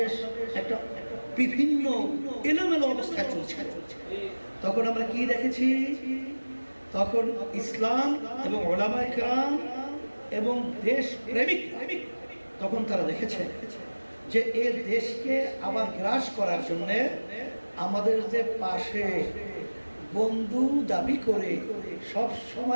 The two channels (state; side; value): inverted; both; correlation -1.00